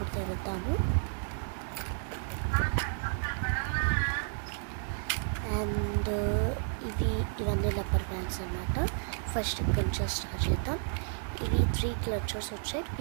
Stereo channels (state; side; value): silent; left; 57 dB below the other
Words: తెరుద్దాము. అండ్ ఇవన్నీ రబ్బర్ బ్యాండ్స్ అన్నమాట. ఫస్ట్ ఇక్కడ నుంచి స్టార్ట్ చేద్దాం. ఇవి 3 క్లచర్స్ వచ్చాయి,